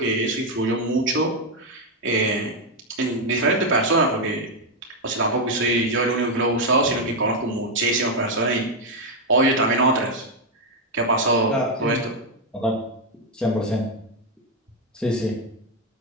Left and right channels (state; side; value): normal; both; correlation 0.03